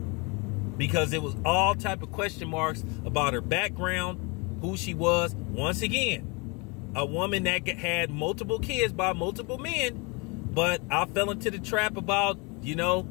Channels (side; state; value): right; quieter; 29.6 dB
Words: Because it was all type of question marks about her background, who she was. Once again, a woman that had multiple kids by multiple men, but I fell into the trap about, you know,